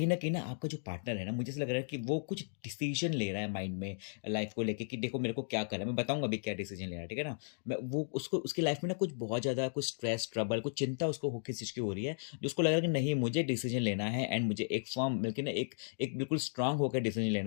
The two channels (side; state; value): right; silent; digital silence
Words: न कहीं ना आपका जो पार्टनर है ना, मुझे ऐसा लग रहा है कि वो कुछ डिसीज़न ले रहा है माइंड में लाइफ़ को लेके कि देखो मेरे को क्या करना है, मैं बताऊँगा अभी क्या डिसीज़न ले रहा है, ठीक है ना? मैं वो उसको उसकी लाइफ़ में ना कुछ बहुत ज़्यादा कुछ स्ट्रेस, ट्रबल, कुछ चिंता उसको हो किस चीज़ की हो रही है, जो उसको लग रहा है कि नहीं मुझे डिसीज़न लेना है एंड मुझे एक फ़र्म बल्कि ना एक एक बिल्कुल स्ट्रॉन्ग होकर डिसीज़न